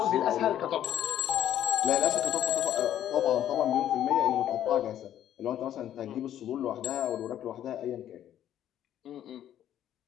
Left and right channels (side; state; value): right; quieter; 11.2 dB